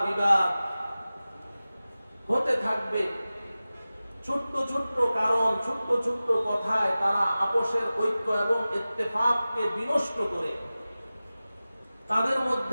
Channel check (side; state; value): both; inverted; correlation -0.96